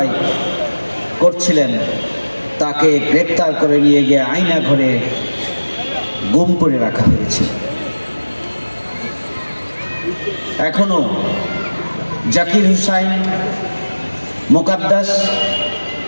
করছিলেন, তাকে গ্রেপ্তার করে নিয়ে গিয়ে আয়না ঘরে গুম করে রাখা হয়েছে। এখনো জাকির হুসাইন, মোকাদ্দাস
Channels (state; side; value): inverted; both; correlation -1.00